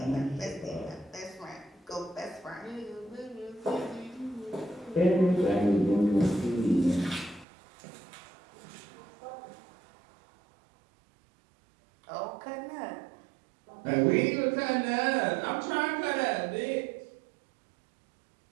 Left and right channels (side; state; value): left; drops out; at 7.5 s